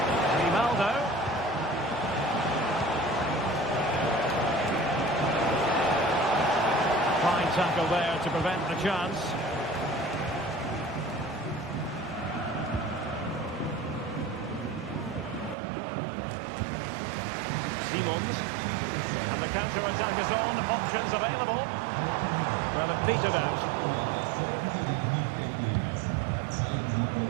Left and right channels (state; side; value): drops out; left; at 15.6 s